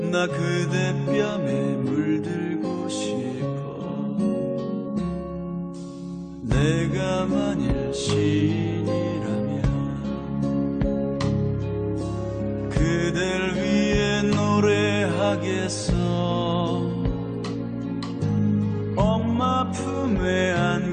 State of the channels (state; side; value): identical; both; correlation 1.00